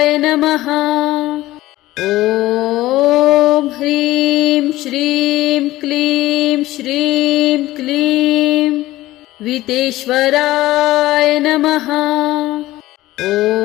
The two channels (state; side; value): quieter; right; 16.7 dB